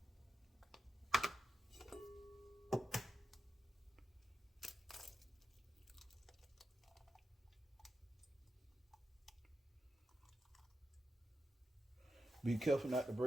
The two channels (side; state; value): both; normal; correlation 0.88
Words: Be careful not to